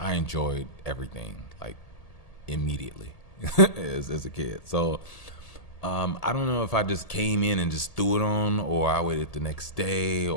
enjoyed everything like immediately as a kid. So I don't know if I just came in and just threw it on, or I waited the next day,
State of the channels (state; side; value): late; right; 1.8 ms